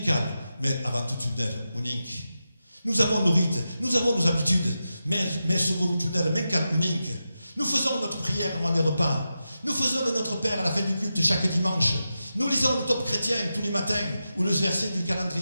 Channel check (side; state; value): both; inverted; correlation -0.90